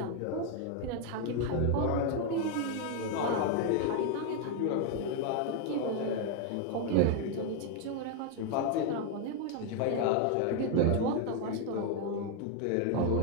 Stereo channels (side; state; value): both; different; correlation 0.01